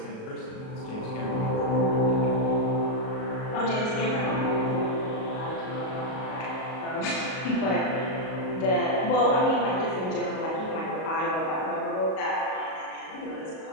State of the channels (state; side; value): late; right; 38 ms